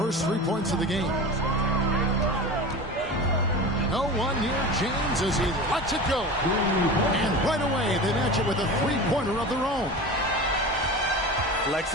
3 points of the game. No one near James as he lets it go. And right away, they match it with a 3-pointer of their own.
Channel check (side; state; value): both; normal; correlation 0.31